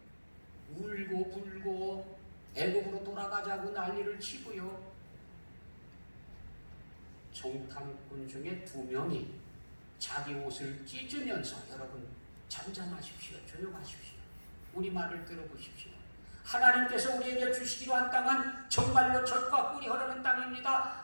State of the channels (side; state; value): both; inverted; correlation -1.00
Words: 울고 불고 애국으로 돌아가자고 난리를 치고요. 정탐꾼 중에 2명이 자기 옷을 찢으면서 여러분 잠잠하십시오. 조용하십시오. 우리 말을 들어보십시오. 하나님께서 우리에게 주시기로 한 땅은 정말로 젖과 꿀이 흐르는 땅입니다.